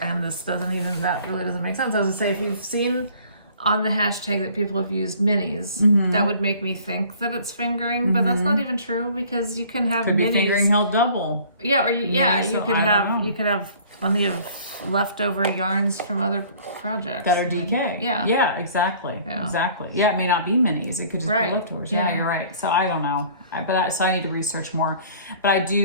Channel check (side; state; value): both; inverted; correlation -0.52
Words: and that really doesn't make sense. I would say, if you've seen on the hashtag that people have used minis, that would make me think that it's fingering, but that's not even true, because you can have could minis. Be fingering held double. Yeah, or you could have plenty of leftover yarns from other projects that are DK. Yeah, exactly. Yeah. Exactly. Yeah, it may not be minis. It could just be leftovers. Yeah, you're right. So I don't know. So I need to research more. But I